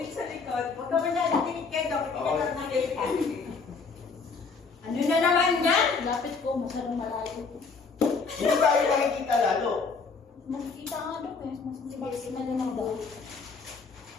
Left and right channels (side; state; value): right; quieter; 4.8 dB